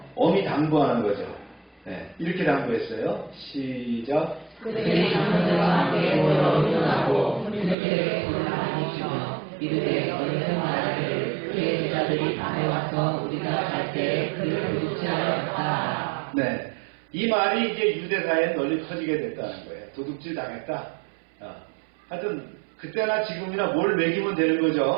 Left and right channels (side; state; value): left; drops out; at 7.8 s